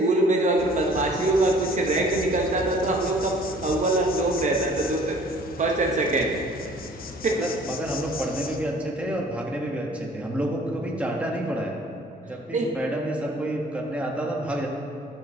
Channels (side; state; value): both; normal; correlation 0.53